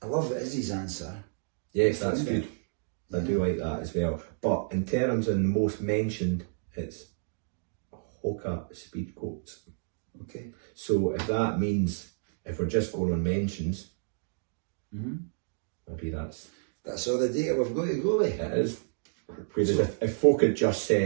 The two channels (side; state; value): left; silent; digital silence